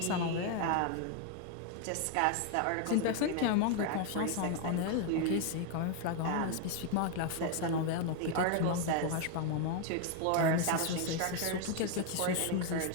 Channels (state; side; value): different; both; correlation 0.01